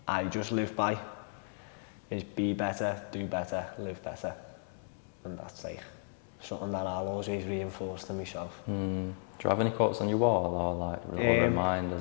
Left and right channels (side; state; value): right; silent; 55 dB below the other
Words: I just live by is be better, do better, live better. And that's like something that I'll always reinforce to myself. Do you have any quotes on your wall or like little